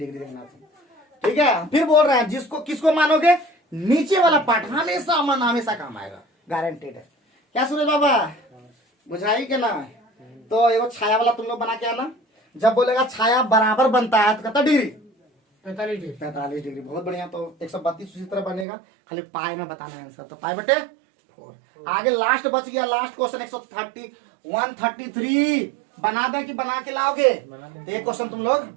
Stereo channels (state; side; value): drops out; left; at 18.7 s